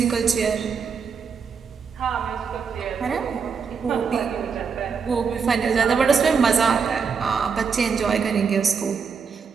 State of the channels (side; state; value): left; quieter; 5.9 dB